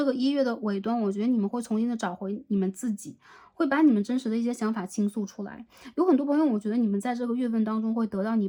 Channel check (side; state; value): both; identical; correlation 1.00